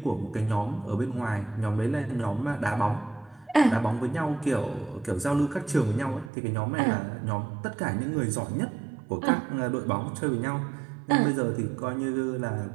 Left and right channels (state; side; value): drops out; left; at 6.3 s